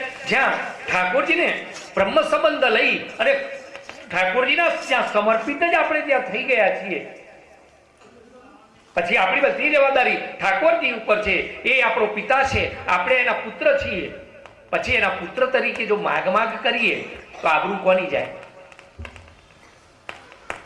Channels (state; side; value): identical; both; correlation 1.00